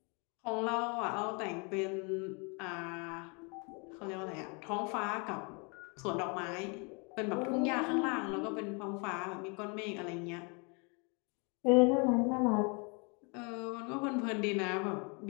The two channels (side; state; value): right; quieter; 33.0 dB